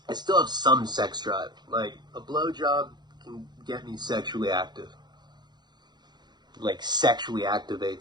I still have some sex drive. Like, a blowjob can get me sexually active. Like, sexually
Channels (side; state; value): left; late; 0.21 ms